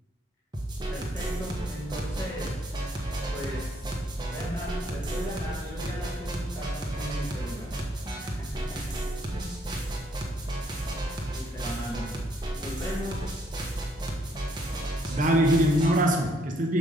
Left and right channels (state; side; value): normal; both; correlation 0.69